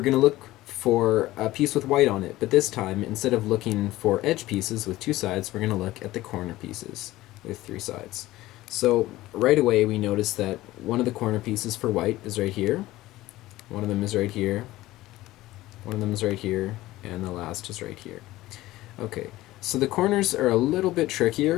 going to look for a piece with white on it, but this time, instead of looking for edge pieces with 2 sides, we're going to look at the corner pieces with 3 sides. So right away we notice that one of the corner pieces for white is right here, one of them is right here, one of them is right here, and the last is right here. Okay, so the corners are a little bit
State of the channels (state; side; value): quieter; right; 17.0 dB